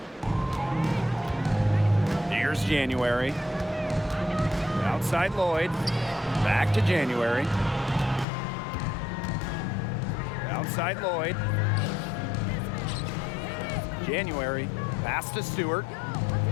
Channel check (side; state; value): right; drops out; at 8.2 s